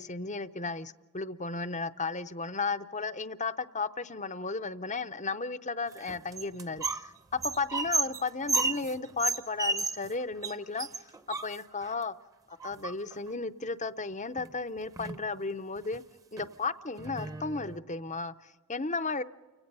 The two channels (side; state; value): both; normal; correlation 0.05